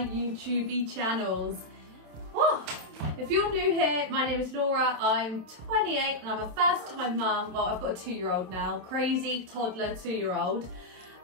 YouTube channels. Whoa. If you're new here, my name is Laura, I'm 28 and I'm a first time mum. Well, I've got a 2-year-old now, crazy toddler 2-year-old.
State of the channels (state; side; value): late; left; 27 ms